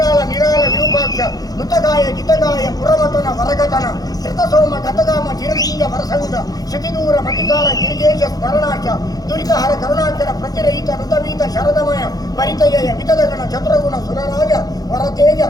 ನಿರಾಳ ವಿರೂಪಾಕ್ಷ ನುತಗಾಯ ಜಿತಗಾಯ ಪುರಮತನ ವರಗತನ ಶ್ರುತಸೋಮ ಗತಗಾಮ ಚಿರಲಿಂಗ ವರಸಂಗ ಶತಿದೂರ ಮತಿಕಾರ ಗಿರಿಜೇಶ ಸ್ಮರಣಾಚ ದುರಿತಹರ ಕರುಣಾಚರ ಪ್ರತಿರಹಿತ ಋತವೀತ ಶರದಮಯ ಪರಿತಯ ವಿತದಗಣ ಚತುರಗುಣ ಸುರರಾಜ ವರತೇಜ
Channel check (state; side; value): late; right; 0.18 ms